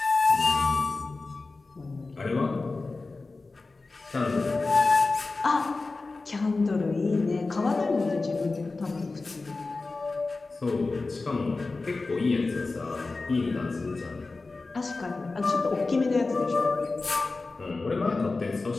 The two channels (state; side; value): quieter; right; 3.6 dB